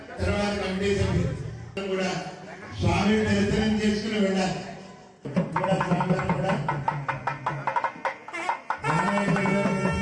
తర్వాత కమిటీ సభ్యులు కూడా స్వామిని దర్శనం చేసుకుని వెళ్ళాలి. కూడా స్వామివారిని కూడా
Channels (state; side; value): identical; both; correlation 1.00